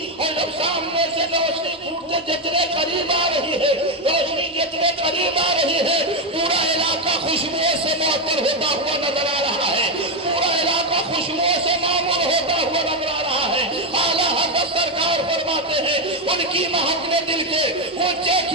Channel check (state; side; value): normal; both; correlation 0.07